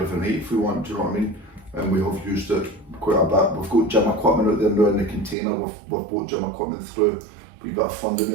night if we want, do you know what I mean? And we have used it quite a bit. We've got gym equipment out there now in the container. We've bought gym equipment through. We've got a funding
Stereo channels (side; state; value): left; drops out; at 5.4 s